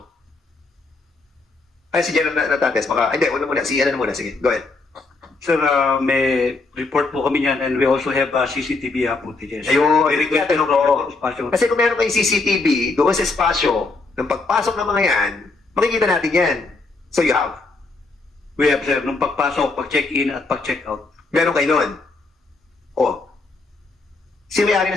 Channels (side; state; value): right; quieter; 3.6 dB